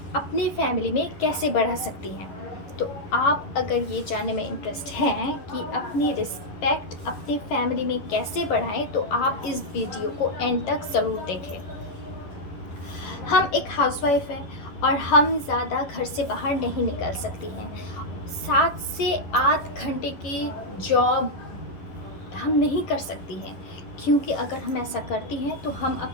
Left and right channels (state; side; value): late; right; 11 ms